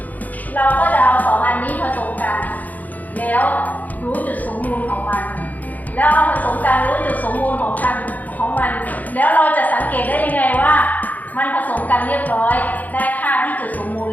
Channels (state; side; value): late; right; 0.080 ms